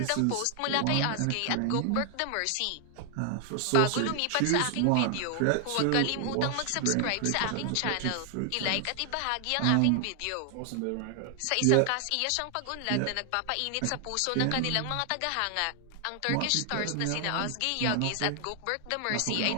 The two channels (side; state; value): both; different; correlation 0.00